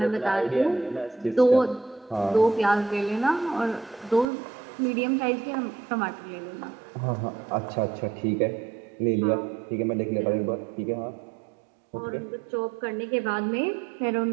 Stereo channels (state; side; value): drops out; left; at 4.2 s